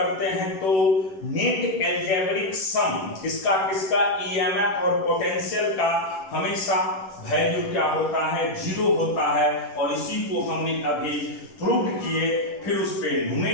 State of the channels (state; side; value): late; right; 11 ms